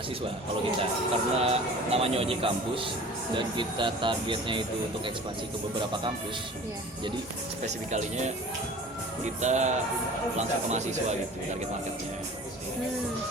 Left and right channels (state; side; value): normal; both; correlation 0.42